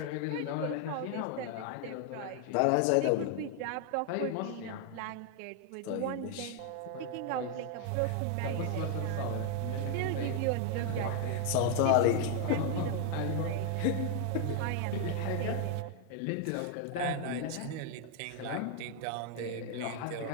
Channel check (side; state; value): both; different; correlation 0.00